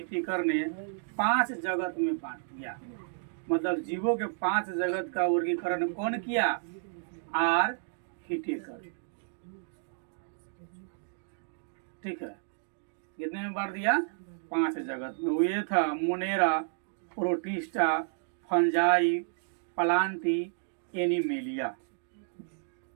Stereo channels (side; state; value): left; silent; digital silence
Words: ने 5 जगत में बांट दिया। मतलब जीवों के 5 जगत का वर्गीकरण कौन किया? आर हिटिकर, ठीक है। कितने में बांट दिया? 5 जगत में। वो ये था Monera, protista, fungi, Plantae, animalia,